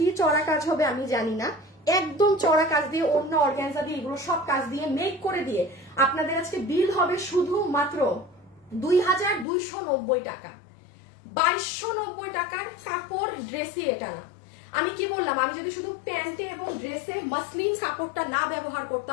চড়া কাজ হবে আমি জানি না, একদম চড়া কাজ দিয়ে, অন্য অর্গানজা দিয়ে, এগুলো সব কাজ দিয়ে মেক করে দিয়ে আপনাদের আজকে বিল হবে শুধু মাত্র 2290 টাকা। 2290 টাকার কাপড় ড্রেসে এটা না। আমি কি বললাম, আমি যদি শুধু প্যান্টে এবং ড্রেসে মাসলিন কাপড়টা না ব্যবহার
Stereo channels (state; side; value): drops out; right; at 9.5 s